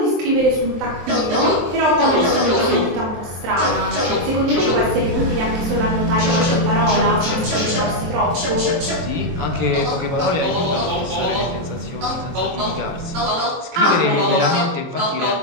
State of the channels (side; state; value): left; late; 23 ms